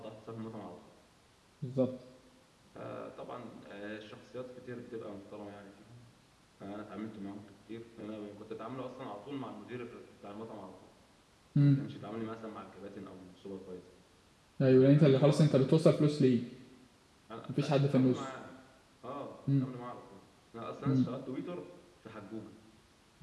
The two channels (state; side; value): identical; both; correlation 1.00